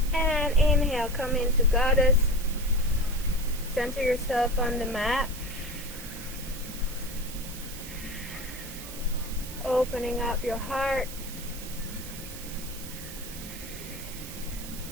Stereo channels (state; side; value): noise; right; hiss, 12 dB below the sound